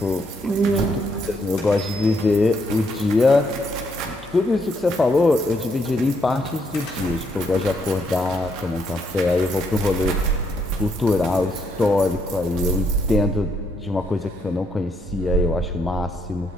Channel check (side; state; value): both; normal; correlation 0.74